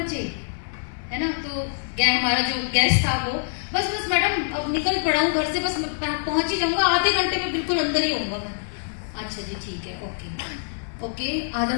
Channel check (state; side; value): silent; right; digital silence